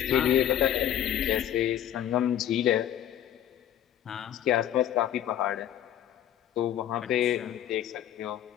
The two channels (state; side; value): quieter; right; 10.8 dB